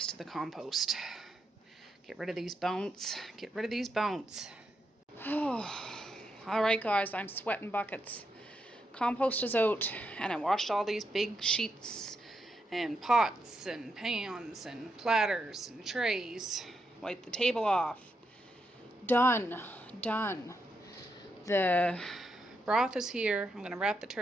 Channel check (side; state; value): both; normal; correlation 0.82